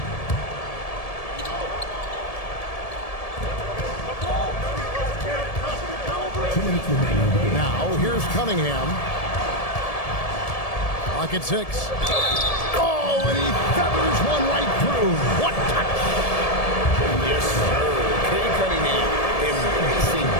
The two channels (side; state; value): right; late; 1.7 ms